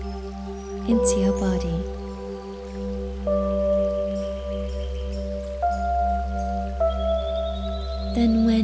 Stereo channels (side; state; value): both; identical; correlation 1.00